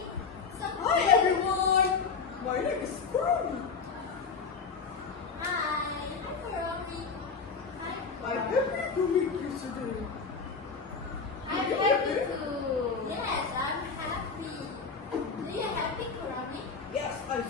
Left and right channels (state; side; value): quieter; right; 5.1 dB